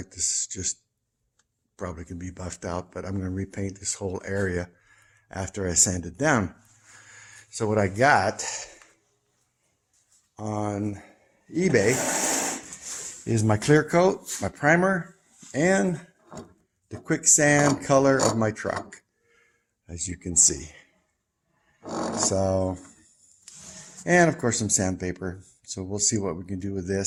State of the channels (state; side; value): identical; both; correlation 1.00